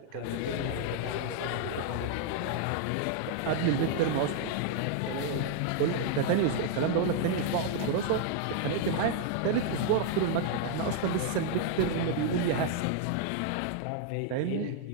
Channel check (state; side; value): different; both; correlation 0.00